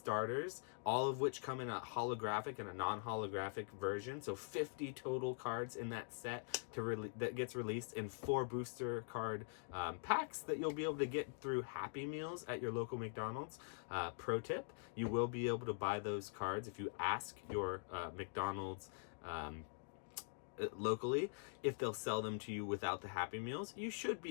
all of which come in a holographic and a non-holographic version. So 50 total cards in that set that gets released in 4 booster card packs that you'll be able to get through Happy Meals at your local McDonald's. Pro tip, you will be able to buy those cards if you ask your McDonald's locally if they'll sell them to you without the Happy Meals. You should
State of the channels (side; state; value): right; silent; digital silence